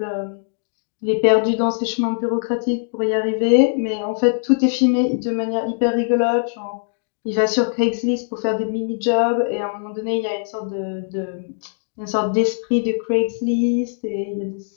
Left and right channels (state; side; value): silent; right; digital silence